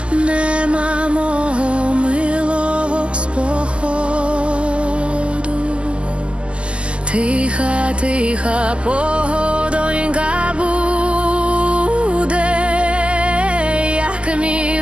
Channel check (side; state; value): left; late; 0.053 ms